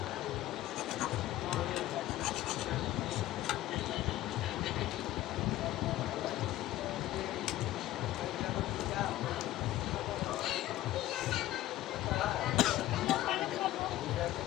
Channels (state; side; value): quieter; right; 14.9 dB